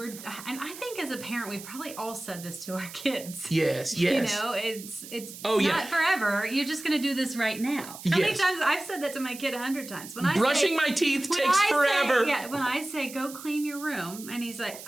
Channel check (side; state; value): right; noise; hiss, 14 dB below the sound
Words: I think as a parent, we probably all said this to our kids. Yes. You know, it's Oh, yeah. not forever. You're just going to do this right now. How many Yes. times I've said that to my kid 100 times. When I Brushing say, my teeth when takes I forever. Say, when I say go clean your room, and he's like,